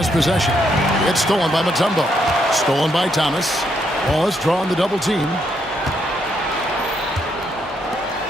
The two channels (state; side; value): normal; both; correlation 0.75